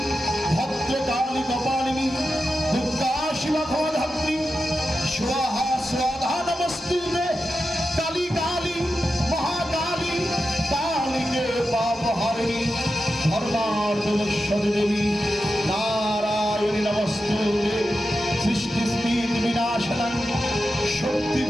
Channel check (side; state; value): both; normal; correlation 0.90